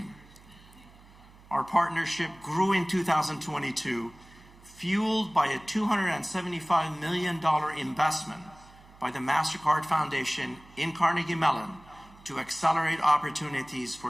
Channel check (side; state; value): right; noise; hum, 24 dB below the sound